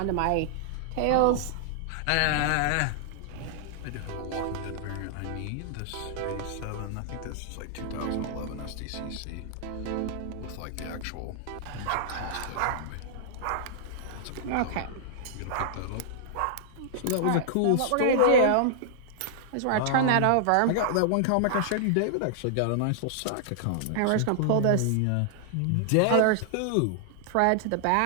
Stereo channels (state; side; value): different; both; correlation -0.01